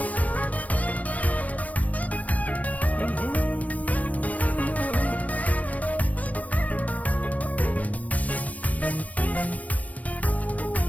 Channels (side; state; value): right; late; 0.069 ms